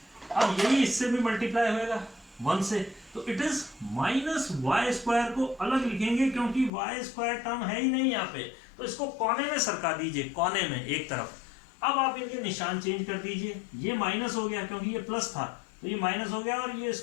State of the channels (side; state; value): right; drops out; at 6.7 s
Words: अब यही इससे भी मल्टीप्लाई होएगा 1 से, तो it is minus y square को अलग लिखेंगे क्योंकि वाई स्क्वायर टर्म है ही नहीं यहाँ पे, तो इसको कोने में सरका दीजिए, कोने में एक तरफ। अब आप इनके निशान चेंज कर दीजिए, ये माइनस हो गया क्योंकि ये प्लस था, तो ये माइनस हो गया और ये